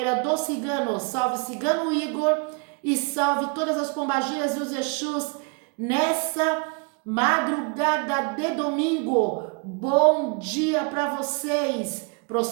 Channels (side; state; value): left; quieter; 33.3 dB